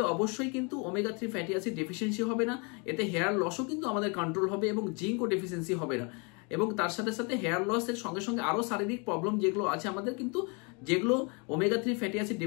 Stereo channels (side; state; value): right; quieter; 32.7 dB